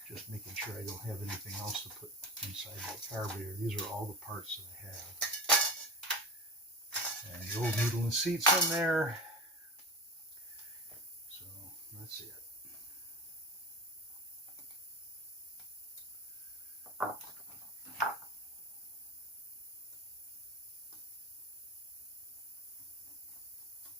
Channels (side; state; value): both; normal; correlation 0.29